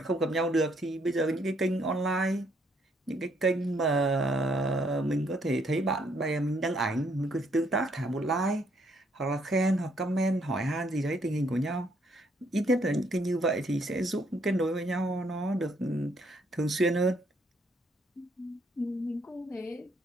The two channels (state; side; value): normal; both; correlation 0.70